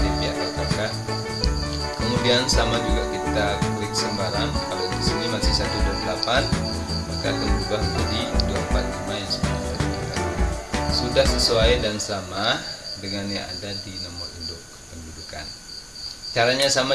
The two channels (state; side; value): identical; both; correlation 1.00